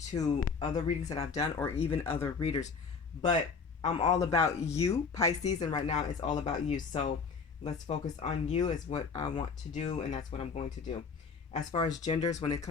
to other readings that I've done or even other readers, but I'm all about you, Pisces, and right now it's all about you. So let's focus on you, is what I want to do, and that's what I'm going to do. As far as genders, when it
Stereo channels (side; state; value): right; quieter; 5.2 dB